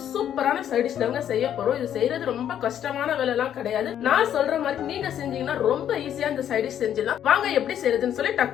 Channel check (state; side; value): quieter; right; 10.0 dB